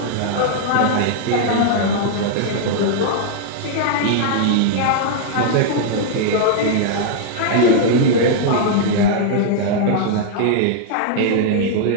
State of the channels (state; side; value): different; both; correlation -0.01